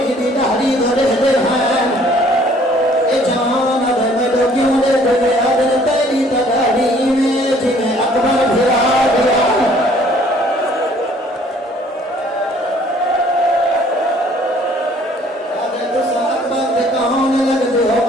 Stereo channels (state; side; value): normal; both; correlation 0.58